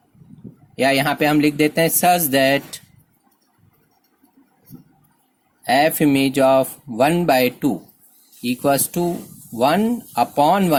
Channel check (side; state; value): both; identical; correlation 1.00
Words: या यहां पे हम लिख देते हैं such that f image of 1/2 equals to 1 upon